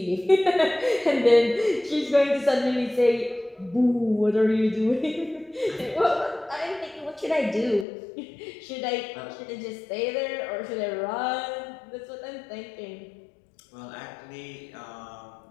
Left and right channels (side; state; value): right; drops out; at 7.9 s